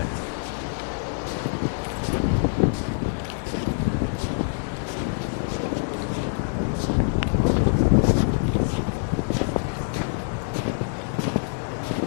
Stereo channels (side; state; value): right; silent; 59 dB below the other